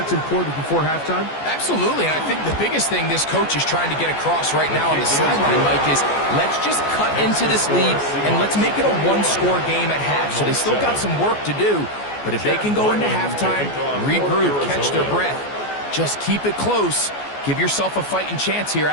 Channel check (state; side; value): late; right; 14 ms